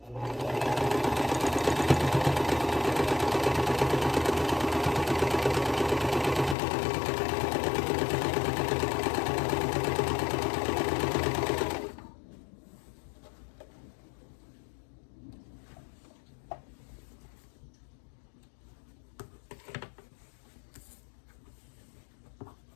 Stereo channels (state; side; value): drops out; right; at 6.6 s